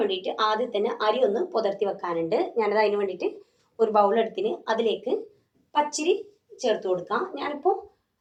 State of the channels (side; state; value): both; identical; correlation 1.00